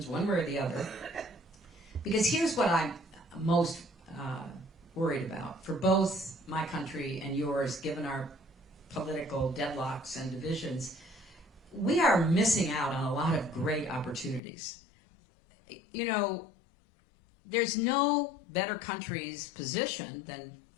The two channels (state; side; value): drops out; right; at 14.4 s